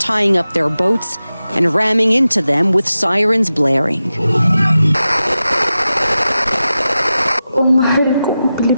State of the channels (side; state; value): both; inverted; correlation -0.93